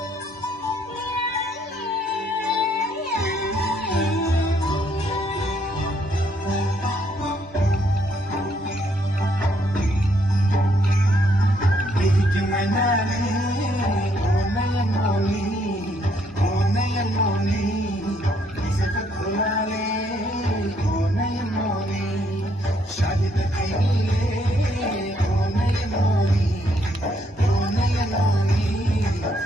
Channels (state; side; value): normal; both; correlation 0.71